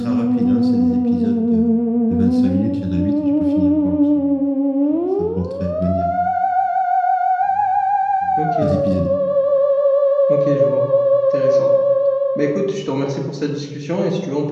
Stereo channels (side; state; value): both; identical; correlation 1.00